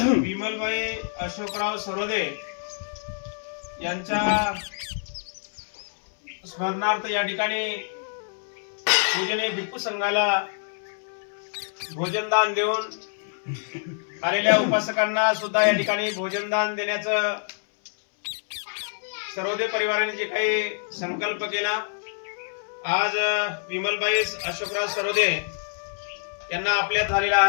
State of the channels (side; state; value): right; silent; 61 dB below the other